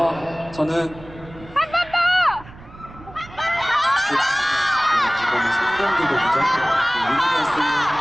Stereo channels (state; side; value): noise; right; rumble, 19 dB below the sound